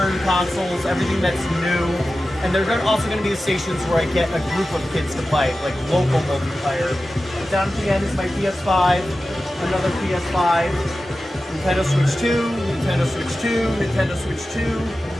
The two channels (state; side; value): normal; both; correlation 0.94